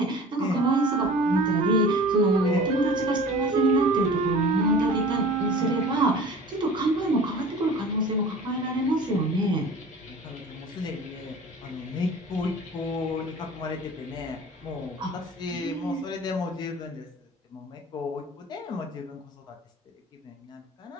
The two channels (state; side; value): normal; both; correlation 0.42